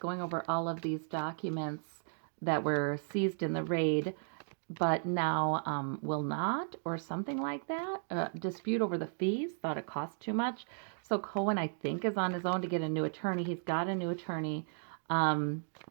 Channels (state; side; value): silent; left; digital silence